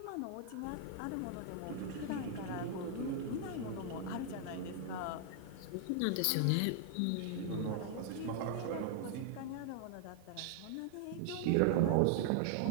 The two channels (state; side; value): different; both; correlation 0.00